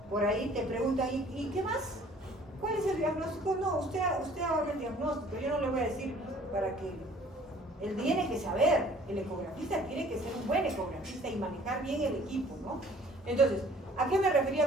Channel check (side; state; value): both; normal; correlation 0.54